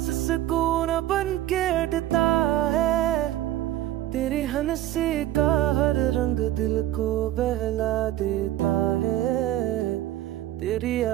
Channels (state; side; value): quieter; left; 13.8 dB